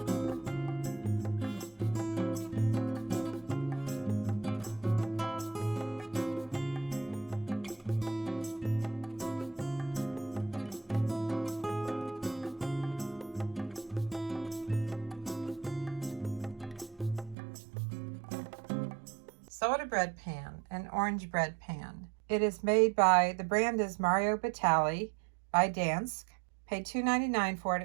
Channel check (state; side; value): drops out; left; at 17.4 s